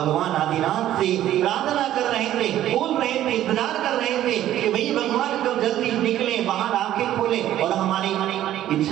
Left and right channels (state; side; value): quieter; left; 12.6 dB